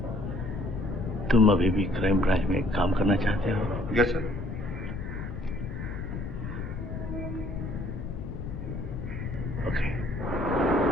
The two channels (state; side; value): noise; left; rumble, 6 dB below the sound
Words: तुम अभी भी क्राइम ब्रांच में काम करना चाहते हो? Yes sir. ओके।